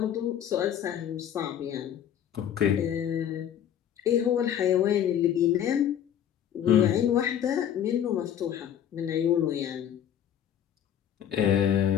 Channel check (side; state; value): right; quieter; 9.9 dB